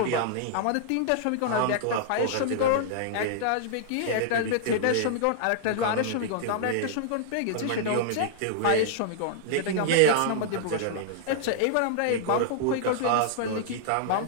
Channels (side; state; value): both; different; correlation -0.01